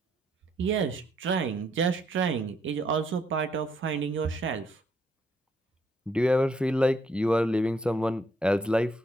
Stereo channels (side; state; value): both; normal; correlation 0.72